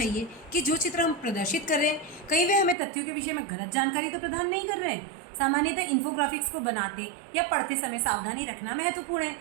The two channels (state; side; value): drops out; left; at 2.8 s